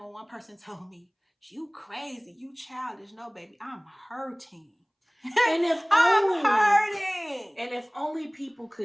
one person told me, you crazy, you childish. No, baby, I'm hurting. And if I'm hurting. And if only people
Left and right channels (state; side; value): identical; both; correlation 1.00